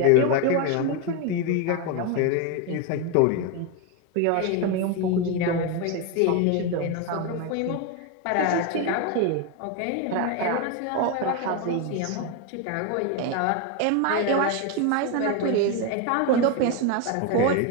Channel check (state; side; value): different; both; correlation 0.02